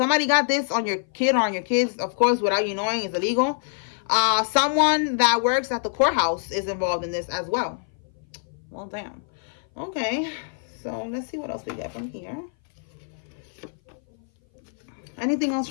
got this on your kid or on your kids. Of course, without you knowing, it's illegal. Someone that works at the courthouse is involved in this as well. Well, damn. Okay. So let's see what else we get from here. Anything else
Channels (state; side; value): silent; right; 58 dB below the other